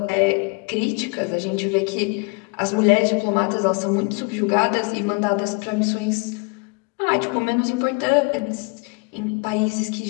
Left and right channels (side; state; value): right; quieter; 30.6 dB